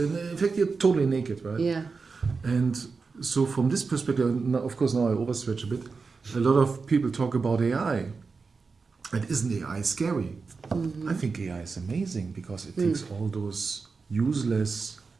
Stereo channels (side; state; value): left; quieter; 4.6 dB